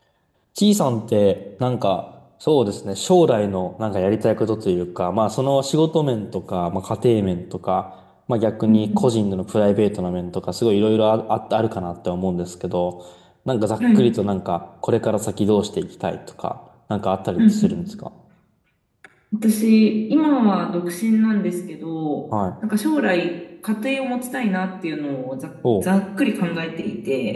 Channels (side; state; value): both; identical; correlation 1.00